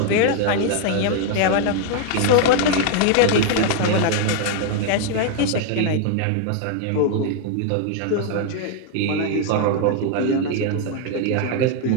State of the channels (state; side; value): different; both; correlation 0.00